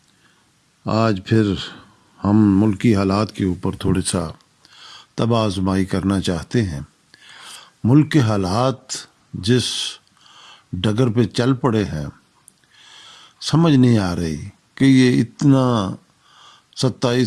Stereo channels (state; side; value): identical; both; correlation 1.00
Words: آج پھر ہم ملکی حالات کے اوپر تھوڑا سا طبع آزمائی کرنا چاہتے ہیں۔ ملک کے حالات جس ڈگر پہ چل پڑے ہیں، سمجھ نہیں آ رہی کہ یہ اتنا